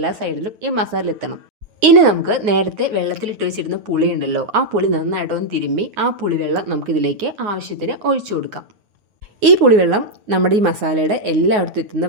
സൈഡിലും ഈ മസാല എത്തണം. ഇനി നമുക്ക് നേരത്തെ വെള്ളത്തിലിട്ട് വെച്ചിരുന്ന പുളി ഉണ്ടല്ലോ, ആ പുളി നന്നായിട്ടൊന്ന് തിരുമ്മി ആ പുളിവെള്ളം നമുക്കിതിലേക്ക് ആവശ്യത്തിന് ഒഴിച്ചു കൊടുക്കാം. ഈ പുളിവെള്ളം നമ്മുടെ ഈ മസാലയുടെ എല്ലായിടത്തും എത്തുന്ന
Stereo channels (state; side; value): late; left; 9.6 ms